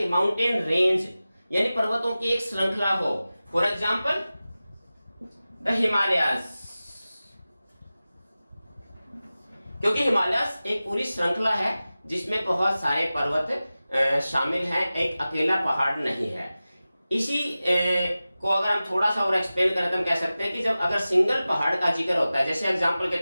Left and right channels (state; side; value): inverted; both; correlation -0.96